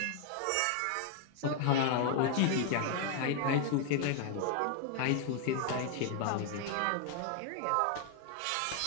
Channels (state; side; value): different; both; correlation 0.00